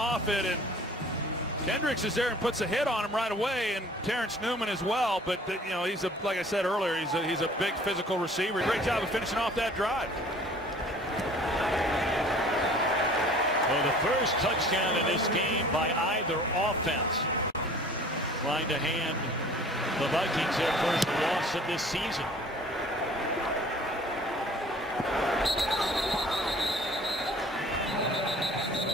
it, and Kendricks is there and puts a hit on him right away, and Terrence Newman as well. But you know, he's like I said earlier, he's a big physical receiver. Great job of finishing off that drive. Well, the first touchdown in this game by either offense, trying to hand the Vikings their first loss of this season.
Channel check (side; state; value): both; normal; correlation 0.49